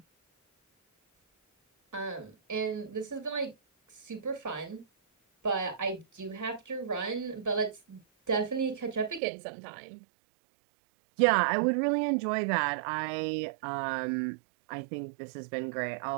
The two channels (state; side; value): drops out; left; at 9.2 s